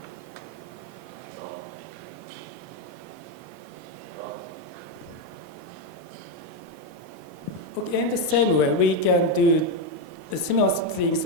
Okay, in the same way, we can do similar things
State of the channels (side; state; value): both; normal; correlation 0.06